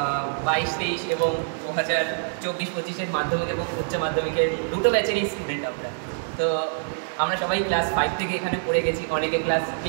এবং 2024-25-এর মাধ্যমিক এবং উচ্চ মাধ্যমিকের দুটো ব্যাচেরই স্টুডেন্ট আমরা। তো আমরা সবাই ক্লাস 5 থেকে এখানে পড়ে গেছি, অনেকে ক্লাস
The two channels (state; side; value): silent; left; digital silence